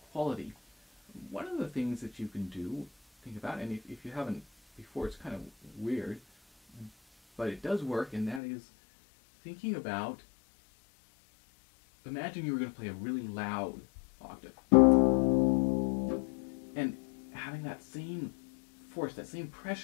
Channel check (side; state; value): right; drops out; at 8.4 s